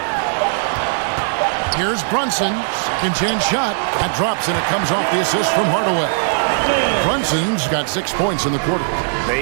Here's Brunson. Second chance shot. That drops, and it comes off the assist from Hardaway. Brunson's got 6 points in the quarter.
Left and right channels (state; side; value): silent; left; digital silence